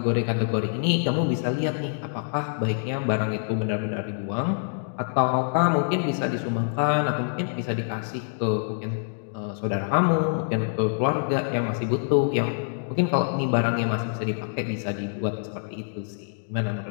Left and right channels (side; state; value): right; silent; digital silence